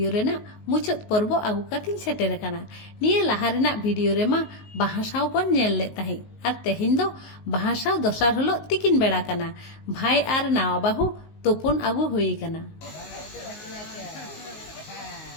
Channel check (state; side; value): late; right; 19 ms